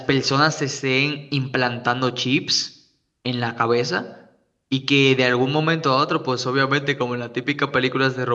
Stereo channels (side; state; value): both; identical; correlation 1.00